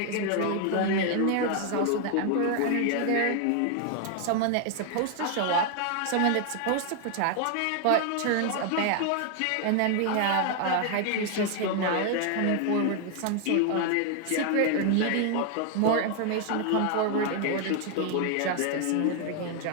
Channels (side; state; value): both; different; correlation 0.00